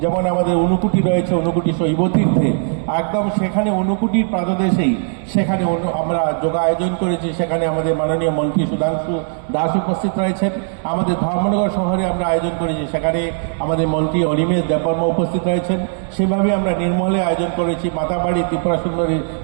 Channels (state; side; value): silent; left; 64 dB below the other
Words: যেমন আমাদের ঊনকোটি রয়েছে, ঊনকোটি শৈবতীর্থে, একদম সেখানে ঊনকোটির প্রাতদেশেই সেখানে আমরা যোগা আয়োজন করেছি। সেখানে আমাদের মাননীয় মন্ত্রী সুধাংশু দাস উপস্থিত রয়েছেন। আমাদের ধর্মনগর শহরে আমরা আয়োজন করেছি, সেখানে আমাদের মন্ত্রী অনিমেষ দেববর্মা উপস্থিত রয়েছেন। সেভাবে আমরা নির্মলে আয়োজন করেছি, মাতাবাড়ি ত্রিপুরা সুন্দরী